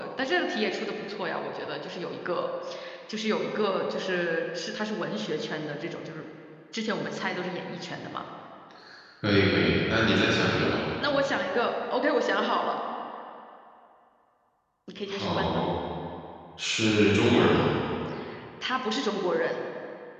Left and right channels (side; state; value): both; identical; correlation 1.00